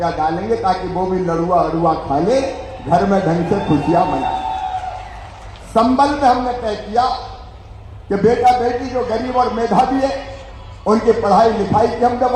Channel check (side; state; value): both; identical; correlation 1.00